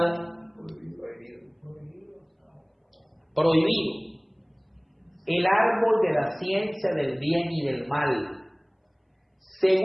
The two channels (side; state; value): both; identical; correlation 1.00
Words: Prohibido. El árbol de la ciencia del bien y del mal.